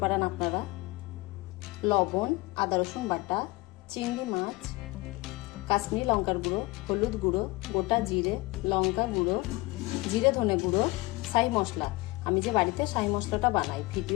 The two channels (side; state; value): right; quieter; 22.1 dB